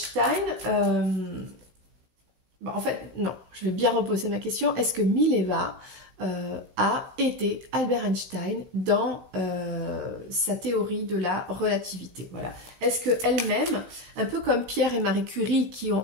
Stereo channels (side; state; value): left; late; 15 ms